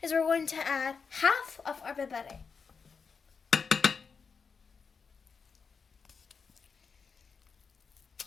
is we're going to add half of our Berbere.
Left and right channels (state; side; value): quieter; right; 5.5 dB